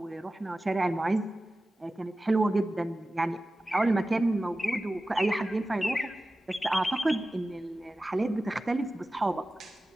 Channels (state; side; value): normal; both; correlation 0.95